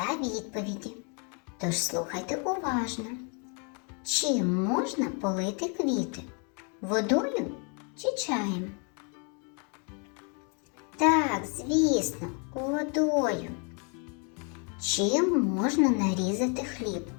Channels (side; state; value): right; quieter; 37.1 dB